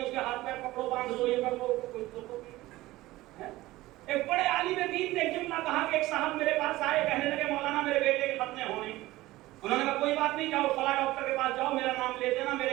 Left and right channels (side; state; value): left; quieter; 17.8 dB